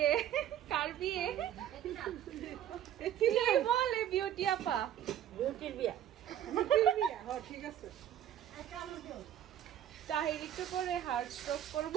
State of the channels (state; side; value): quieter; left; 10.9 dB